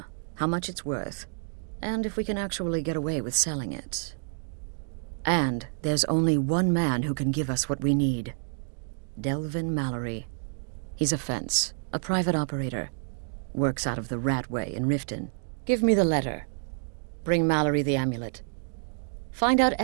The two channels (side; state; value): left; silent; 59 dB below the other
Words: how much it's worth, and if we can actually get away with selling it. And there's only one man who can give us what we need. Delvin Mallory. He's a fence, a private operator. Works out of the Ratway in Riften. Give me the letter. Bring Mallory the amulet. Find out